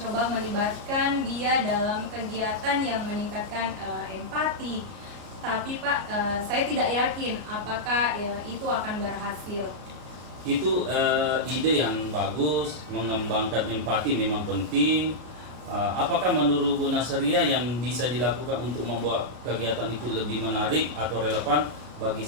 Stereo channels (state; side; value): late; left; 33 ms